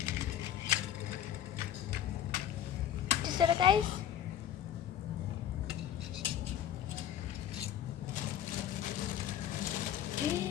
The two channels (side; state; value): right; quieter; 10.5 dB